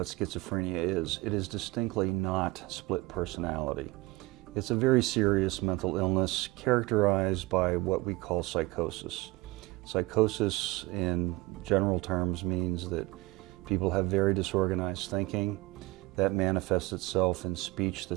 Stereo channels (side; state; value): left; quieter; 20.8 dB